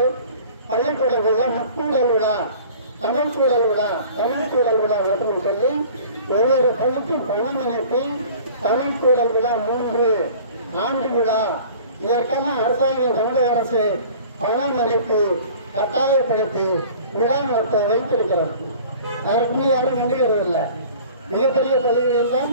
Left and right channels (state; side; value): inverted; both; correlation -0.46